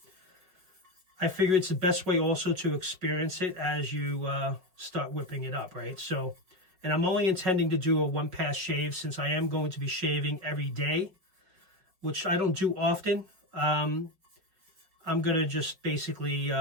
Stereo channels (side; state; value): left; late; 5.4 ms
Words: I figure it's the best way also to experience it as you start whipping it up, right? So, and I'm only intending to do a one-pass shave since I am going to be shaving every day, which I don't do often. I'm going to just basically